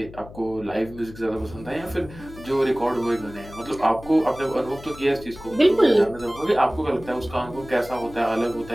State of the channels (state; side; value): noise; left; hum, 17 dB below the sound